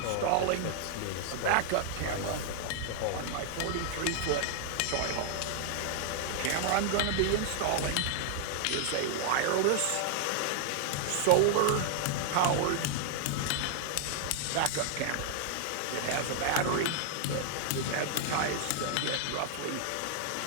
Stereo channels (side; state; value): both; different; correlation -0.01